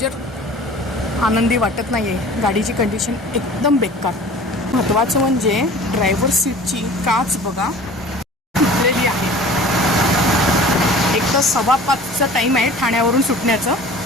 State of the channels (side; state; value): both; normal; correlation 0.43